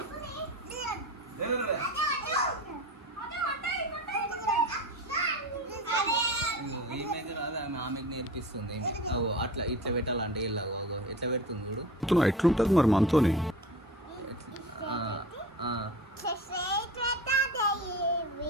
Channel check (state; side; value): normal; both; correlation 0.33